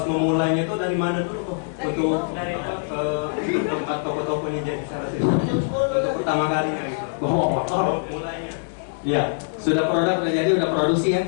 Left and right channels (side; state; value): right; silent; digital silence